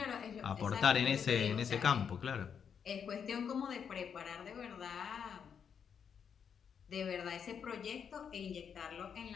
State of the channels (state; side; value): quieter; right; 7.3 dB